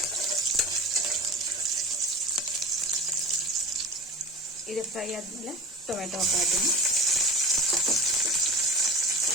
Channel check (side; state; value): both; normal; correlation 0.33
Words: ಇದು ಫ್ರೈ ಆದಮೇಲೆ ಟೊಮೆಟೊ ಹಾಕ್ತೀನಿ.